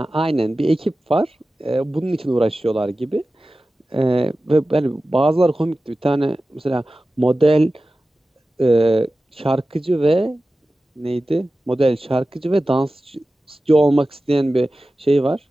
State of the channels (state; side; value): normal; both; correlation 0.95